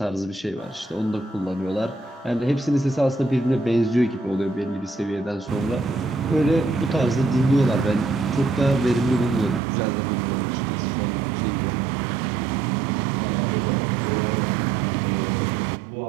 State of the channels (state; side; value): drops out; left; at 9.6 s